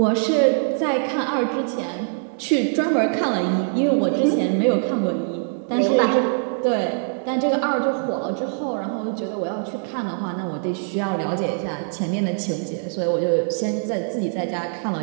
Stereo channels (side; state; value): left; silent; 64 dB below the other